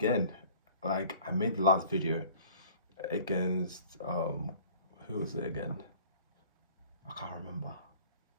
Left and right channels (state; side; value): inverted; both; correlation -0.50